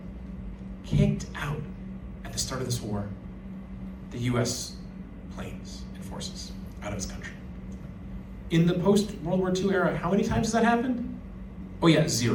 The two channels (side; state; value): both; identical; correlation 1.00